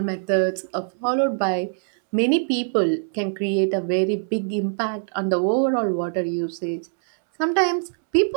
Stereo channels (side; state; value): left; silent; 63 dB below the other